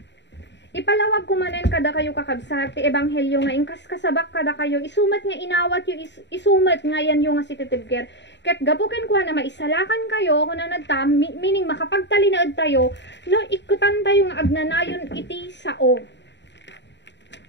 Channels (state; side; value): late; right; 0.52 ms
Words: Ipalawag kumanen kada kayo kakabsat ti ebanghelyo nga ingkas kasabak kada kayo isumat nga inawat yu isumat nga yan yung nga sititibker ket gapuken kuha na maisalakan kayo kunanad ta meaning makapagtalinaed tayo no ikutan tayo nga agnanayon iti sao.